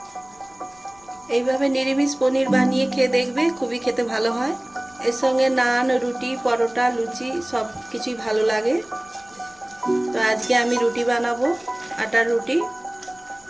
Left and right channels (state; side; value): noise; left; rumble, 29 dB below the sound